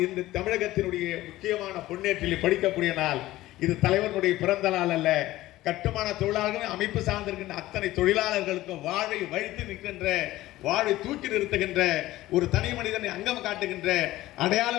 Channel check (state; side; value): quieter; right; 16.5 dB